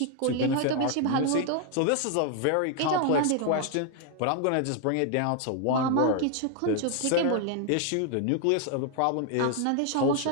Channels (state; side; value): different; both; correlation 0.00